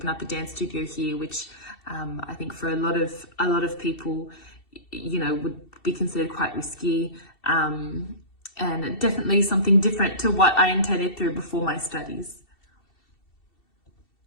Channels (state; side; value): late; right; 2.7 ms